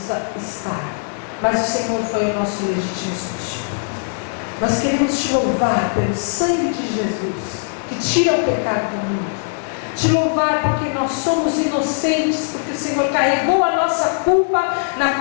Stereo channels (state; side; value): silent; right; digital silence